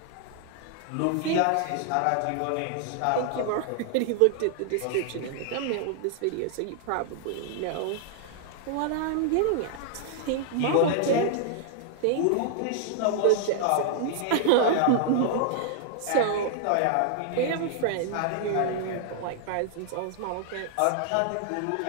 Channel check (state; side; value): different; both; correlation -0.01